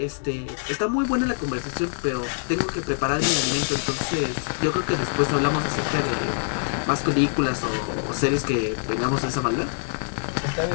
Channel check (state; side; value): silent; right; digital silence